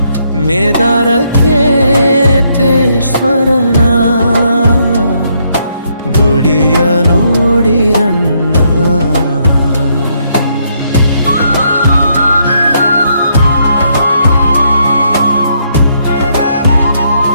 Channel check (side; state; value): both; inverted; correlation -0.74